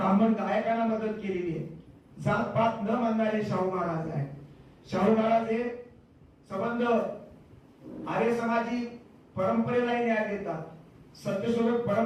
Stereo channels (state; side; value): identical; both; correlation 1.00